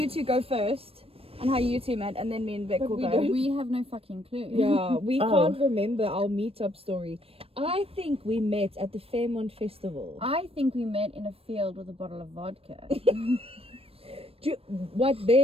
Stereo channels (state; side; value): late; left; 0.28 ms